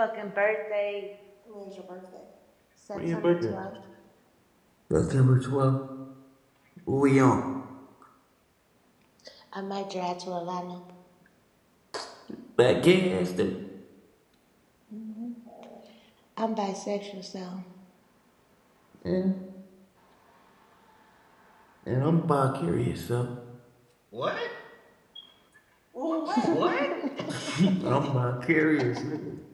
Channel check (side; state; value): both; identical; correlation 1.00